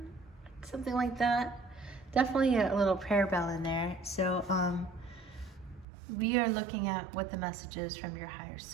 something like that. Definitely a little prayer bell in there. So we are looking at what the message is from your higher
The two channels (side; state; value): left; drops out; at 5.9 s